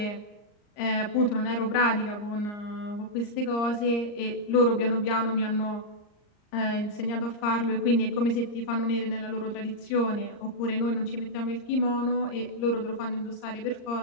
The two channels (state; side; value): late; right; 39 ms